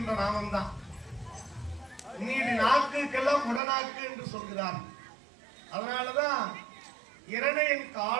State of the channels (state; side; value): drops out; left; at 3.6 s